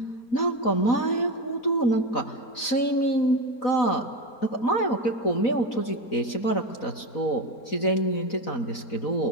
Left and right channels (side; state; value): right; late; 4.0 ms